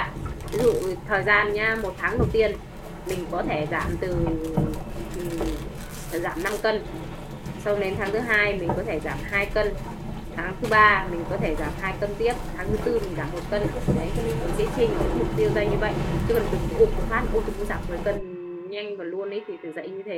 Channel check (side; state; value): both; identical; correlation 1.00